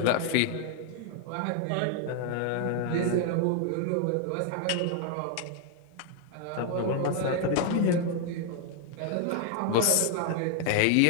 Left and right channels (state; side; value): different; both; correlation 0.00